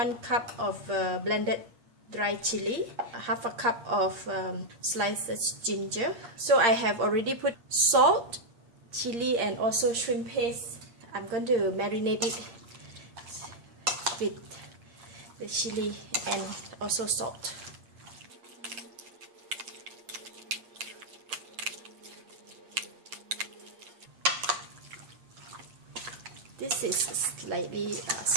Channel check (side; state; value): left; late; 8.6 ms